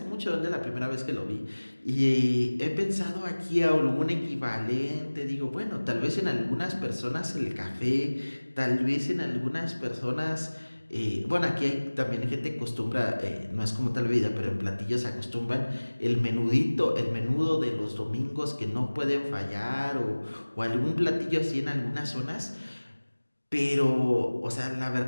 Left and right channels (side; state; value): both; inverted; correlation -1.00